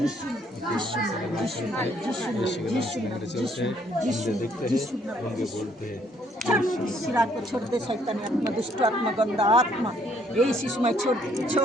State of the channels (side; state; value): both; normal; correlation 0.67